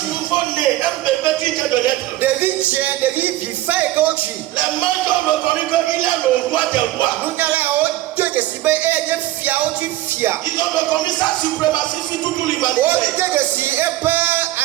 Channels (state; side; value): quieter; left; 15.6 dB